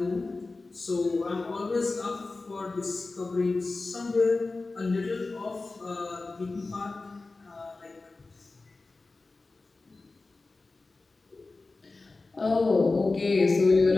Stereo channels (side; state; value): right; quieter; 3.5 dB